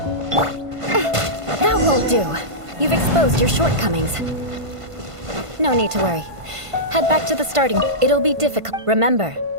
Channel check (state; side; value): late; left; 1.5 ms